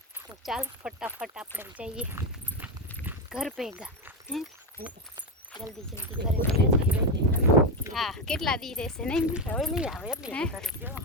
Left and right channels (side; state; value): both; normal; correlation 0.11